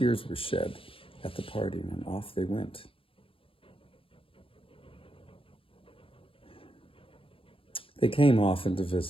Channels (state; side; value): late; right; 0.26 ms